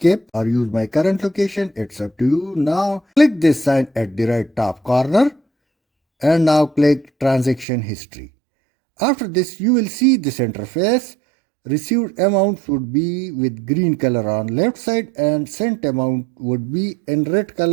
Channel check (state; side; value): drops out; left; at 7.7 s